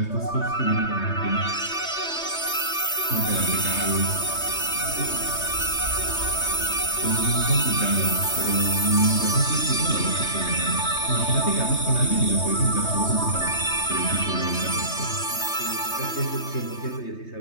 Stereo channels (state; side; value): late; right; 3.2 ms